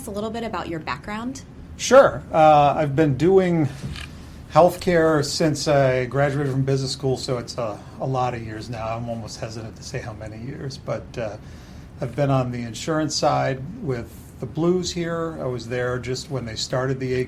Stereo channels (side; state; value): both; identical; correlation 1.00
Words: a little bit about your background? Sure. I've been doing healthcare since I graduated from business school, so it's a lot of years now. I'm almost hesitant to say how many years, but I've been on the insurance side with the Blues here. I was there just when they started the